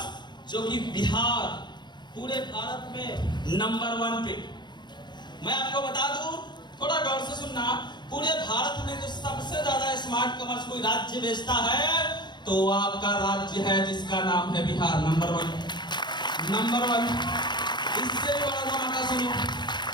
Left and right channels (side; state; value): right; late; 0.21 ms